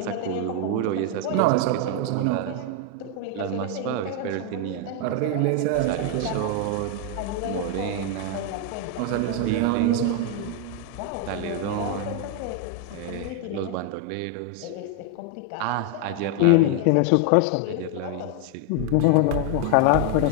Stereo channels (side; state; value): both; different; correlation 0.01